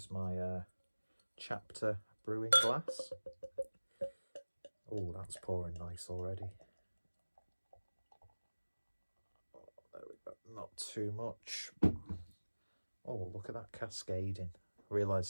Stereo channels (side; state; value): both; inverted; correlation -1.00